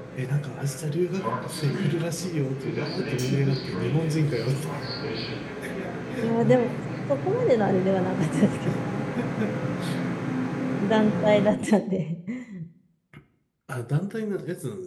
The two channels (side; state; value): both; identical; correlation 1.00